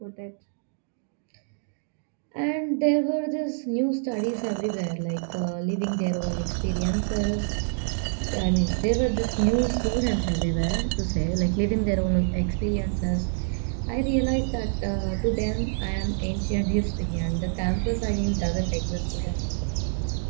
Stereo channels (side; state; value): left; silent; digital silence